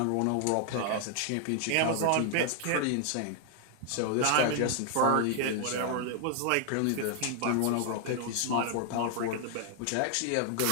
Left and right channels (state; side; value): different; both; correlation 0.00